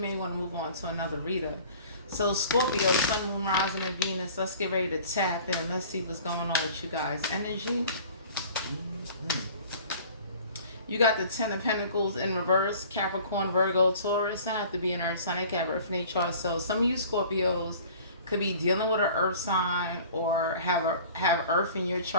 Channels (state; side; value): inverted; both; correlation -0.46